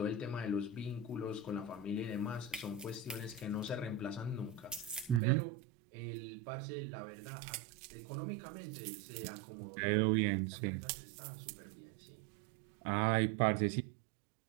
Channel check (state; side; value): drops out; left; at 5.2 s